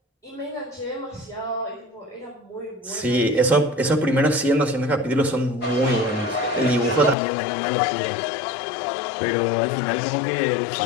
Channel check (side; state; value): right; drops out; at 7.2 s